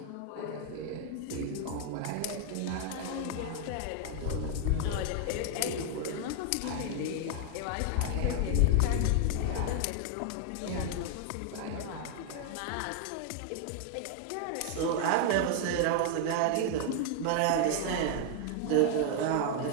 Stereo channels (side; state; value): both; different; correlation 0.00